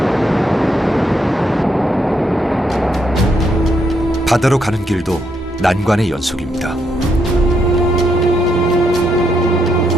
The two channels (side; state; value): both; normal; correlation 0.77